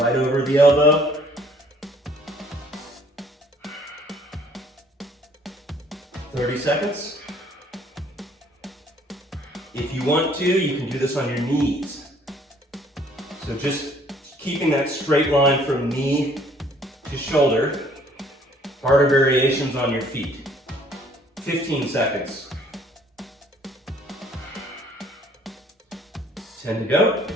over the elbow. "30 seconds. If you want to, you can do this on your knees. So just keeping that straight line from knee to shoulder. Harder variations on your feet. 15 seconds. 10 to go.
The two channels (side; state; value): both; normal; correlation 0.59